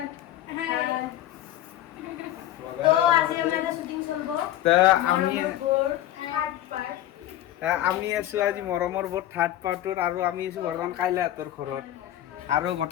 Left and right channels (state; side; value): quieter; right; 13.2 dB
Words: হাই তো আজি আমাৰ শ্বুটিং চলব তা আমি থাৰ্ড পাৰ্ট আছো আজি মৰমৰ বৰ থাৰ্ড পাৰ্টৰ আৰু আমি আছো বৰ্তমান কাইলৈ ঘৰত আৰু